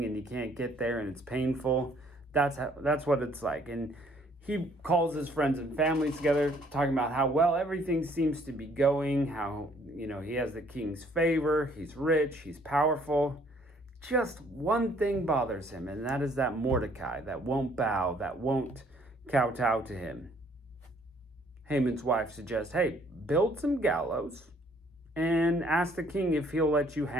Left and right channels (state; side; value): normal; both; correlation 0.62